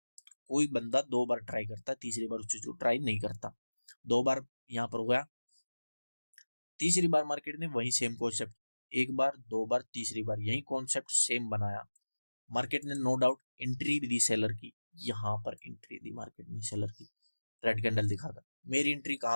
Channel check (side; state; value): both; inverted; correlation -1.00